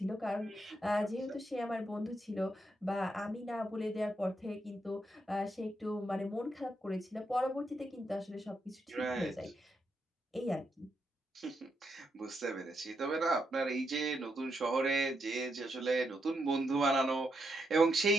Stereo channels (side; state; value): both; normal; correlation 0.81